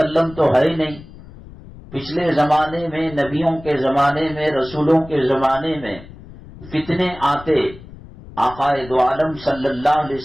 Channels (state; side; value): noise; left; rumble, 18 dB below the sound